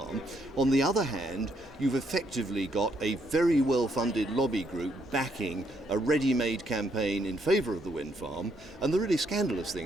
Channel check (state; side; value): normal; both; correlation 0.73